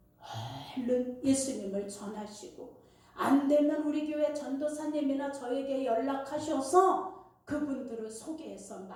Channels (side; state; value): both; identical; correlation 1.00